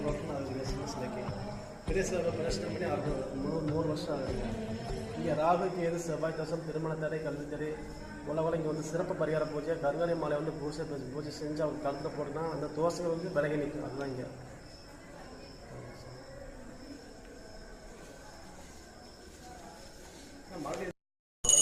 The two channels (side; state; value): both; identical; correlation 1.00